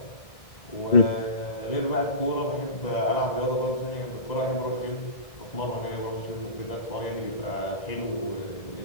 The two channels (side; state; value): right; late; 1.6 ms